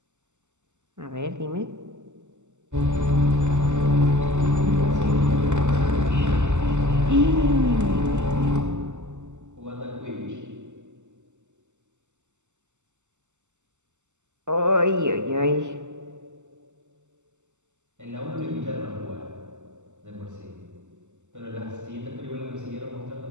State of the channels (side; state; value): left; late; 0.84 ms